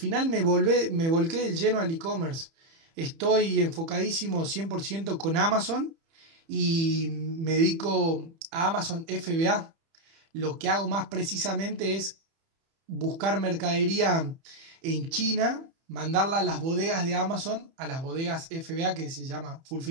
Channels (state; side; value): late; left; 30 ms